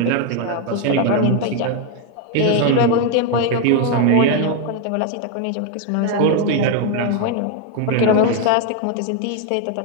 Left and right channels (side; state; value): both; different; correlation 0.01